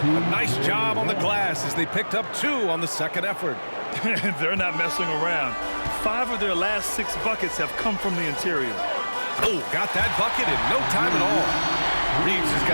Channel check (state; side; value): inverted; both; correlation -1.00